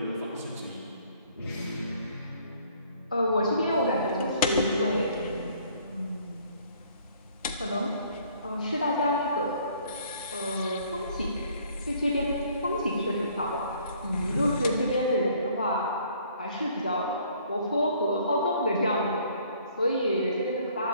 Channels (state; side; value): inverted; both; correlation -0.60